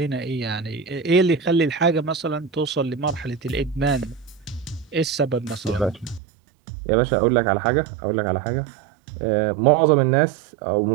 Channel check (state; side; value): drops out; left; at 6.2 s